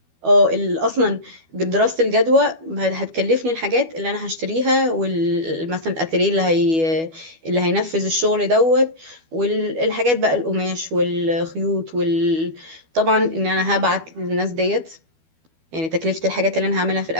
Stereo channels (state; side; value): late; left; 12 ms